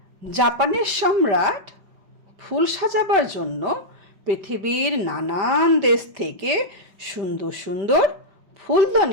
জাপানের সম্রাট ফুল সাজাবার জন্য পৃথিবীর নানান দেশ থেকে সুন্দর সুন্দর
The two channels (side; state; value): left; late; 5.1 ms